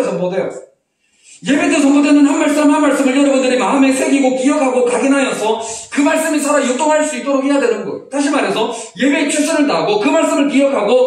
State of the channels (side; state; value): both; identical; correlation 1.00